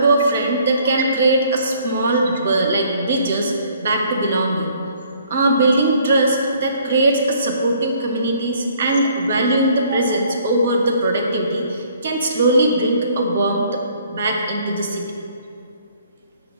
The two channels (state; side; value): inverted; both; correlation -0.61